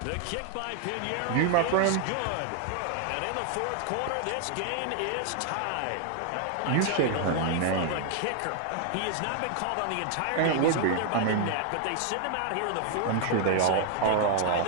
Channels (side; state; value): both; different; correlation 0.00